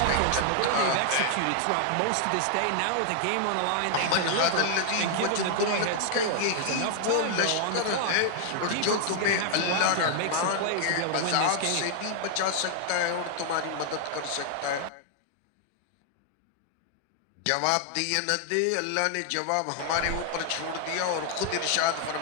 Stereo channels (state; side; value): different; both; correlation 0.00